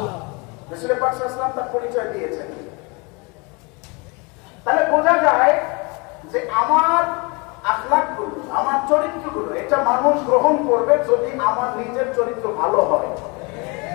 রাসূল পাক সাল্লাল্লাহু আলাইহি ওয়াসাল্লাম তার পরিচয় দিয়েছেন। তাহলে বোঝা যায় যে আমার আখলাকগুলো, আমার চরিত্রগুলো, এটা মানুষ গ্রহণ করবে যদি আমার নিজের চরিত্র ভালো হয়।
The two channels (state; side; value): quieter; right; 29.2 dB